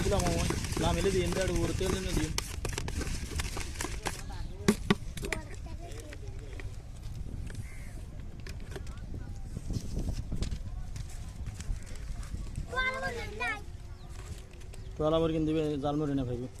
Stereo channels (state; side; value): identical; both; correlation 1.00